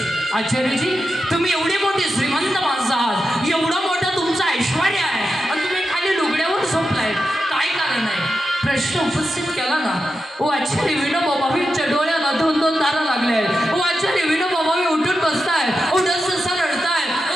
आचार्यजी, तुम्ही एवढी मोठी श्रीमंत माणसं आहात, एवढं मोठं तुमचं ऐश्वर्य आहे आणि तुम्ही खाली लुगड्यावर झोपलाय, काय कारण आहे? प्रश्न उपस्थित केला ना. ओ आचार्य विनोबाबांच्या डोळ्याला 2-2 तारा लागल्या आहेत. ओ आचार्य विनोबाबा उठून बसताय, ओ डससा रडताय. ओ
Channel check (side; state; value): both; normal; correlation 0.89